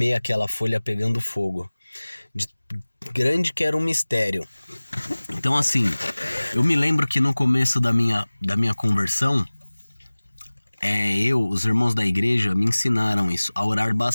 aquela folha pegando fogo. De grande que era um mistério. Então assim, eu me lembro que no começo da minha conversão, os irmãos da igreja me ensinaram isso, a orar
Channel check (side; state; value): both; inverted; correlation -1.00